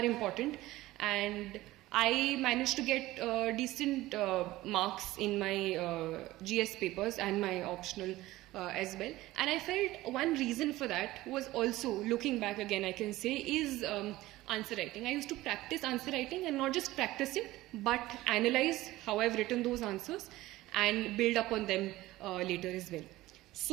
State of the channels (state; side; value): quieter; left; 17.3 dB